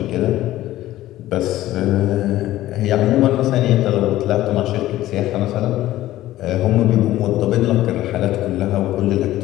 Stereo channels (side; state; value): right; quieter; 15.0 dB